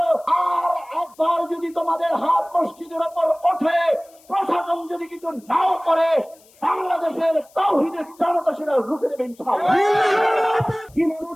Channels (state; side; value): noise; left; hiss, 28 dB below the sound